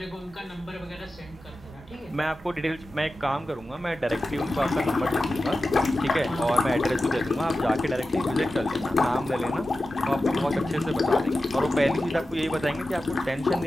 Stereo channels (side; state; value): both; normal; correlation 0.93